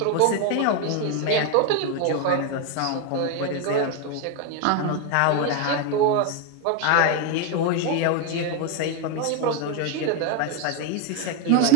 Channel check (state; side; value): different; both; correlation 0.01